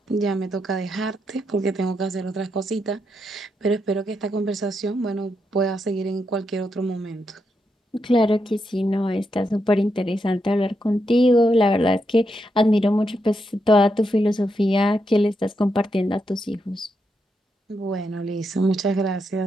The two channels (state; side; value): normal; both; correlation 0.82